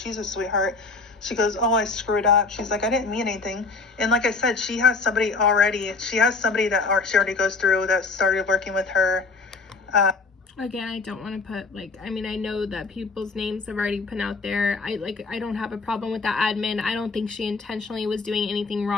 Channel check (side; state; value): right; quieter; 4.1 dB